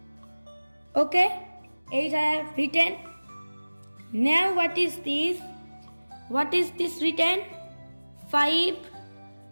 Okay? 8 I have written. Now what is this? What is this written? 5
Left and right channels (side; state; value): both; inverted; correlation -1.00